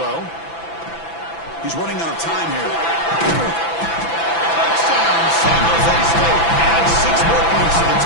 He's running out of time here. Touchdown, San Jose State. Adds 6 more points to the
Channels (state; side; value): late; right; 6.0 ms